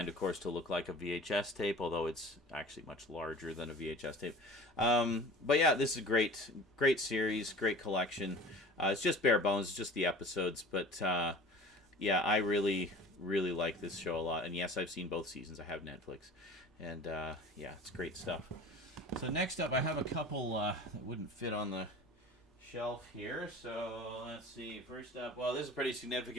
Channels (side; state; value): both; normal; correlation 0.41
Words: of course, to look like a VHS tape, although it's actually much larger than a VHS tape. But yeah, this is a great series, great collection. It's just bare bones, it's just the episodes, but yeah, I really like this show a lot. And yes, I've seen both seasons. I have Netflix. And yeah, it's great stuff. So next up, I have a couple that wouldn't fit on the shelf here. So let's see. First up, well, this is a pretty